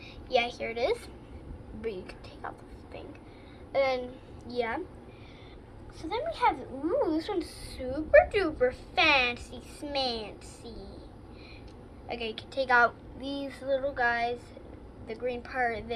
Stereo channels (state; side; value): identical; both; correlation 1.00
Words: yeah, here it is. But you can take off this thing. And then yeah. So then we have. Ooh, this one's super duper fancy smancy. Okay, you can take out these little guys. The green part,